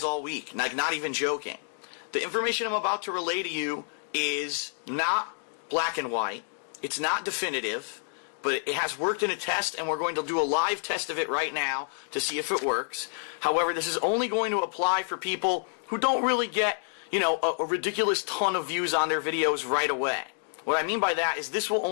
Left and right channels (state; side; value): silent; right; digital silence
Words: all week. Like, not even joking. The information I'm about to relay to you is not black and white. It's not definitive, but it has worked in a test, and we're going to do a live test of it right now to see if it works. However, this is only going to apply for people who don't really get, a ridiculous ton of views on their videos right away. What I mean by that is this will